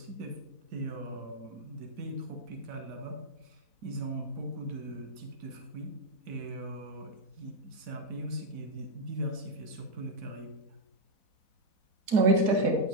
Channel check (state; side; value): late; left; 4.1 ms